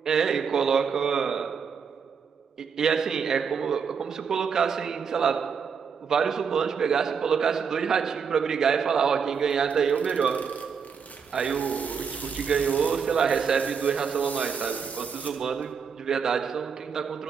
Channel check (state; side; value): quieter; left; 6.4 dB